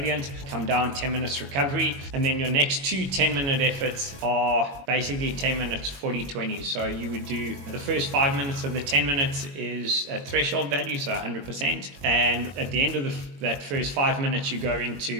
Come down, 10 minutes recovery, and then your next 2 10-minute efforts are basically 10 minutes 40-20. So you would do the first 5 minutes of the 10 minutes is a threshold value, so 100%, and at the end of that first 5 minutes you go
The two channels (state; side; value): late; left; 22 ms